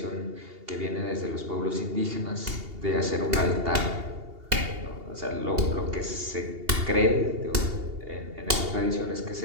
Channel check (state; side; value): late; left; 2.8 ms